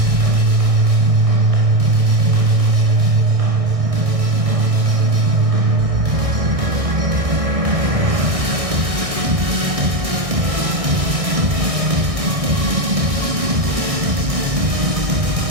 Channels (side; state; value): left; late; 1.6 ms